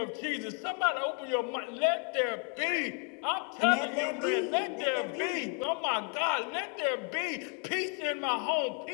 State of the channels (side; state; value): right; quieter; 39.2 dB